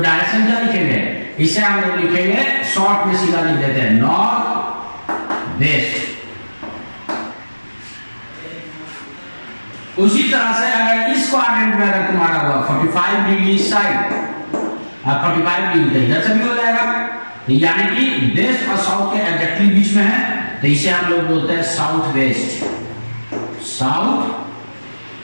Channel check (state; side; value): inverted; both; correlation -1.00